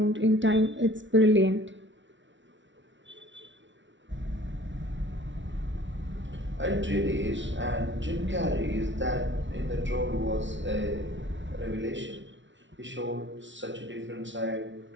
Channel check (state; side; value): late; left; 0.55 ms